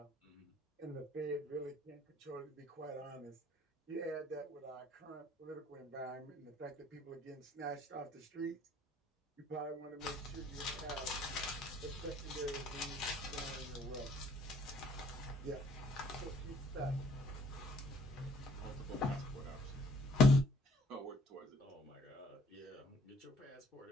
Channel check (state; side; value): normal; both; correlation 0.60